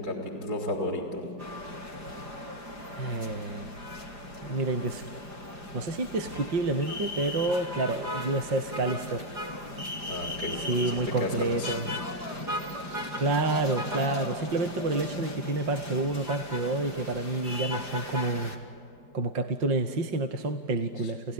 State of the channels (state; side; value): late; left; 5.0 ms